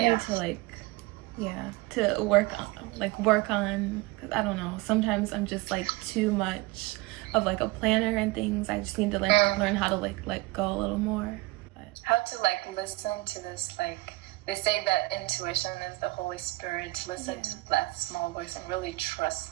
need to like, to work on. Cause I don't know. Sometimes I'm just like too much of like a planner and things. I just need to like learn how to like let go a little more. But how to like listen to this, like. They say that intuition is the Holy Spirit. Listen to that small voice and really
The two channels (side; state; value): left; quieter; 21.3 dB